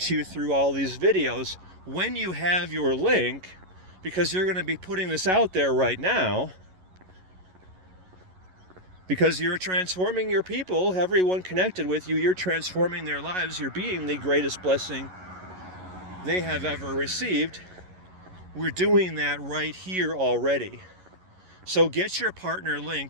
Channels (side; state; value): left; late; 11 ms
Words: you through all these videos when you have your link, because you're going to be putting this out there right now, because you're transforming your people, everyone connected with you, you're transforming their lives, you're being the greatest blessing they have ever received. We're doing that right here already. So get your partner